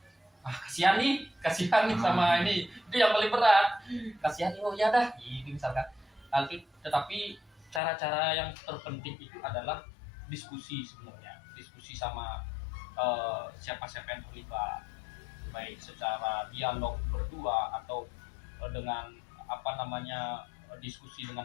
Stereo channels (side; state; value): right; drops out; at 7.8 s